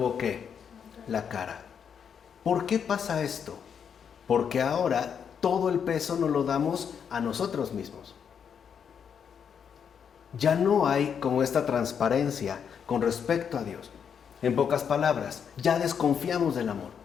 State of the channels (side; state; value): right; quieter; 7.4 dB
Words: ¿qué? La cara. ¿Por qué pasa esto? Porque ahora todo el peso nos lo damos a nosotros mismos. Ya no hay como esta transparencia con respecto a Dios. En pocas palabras, ya desconfiamos del amor.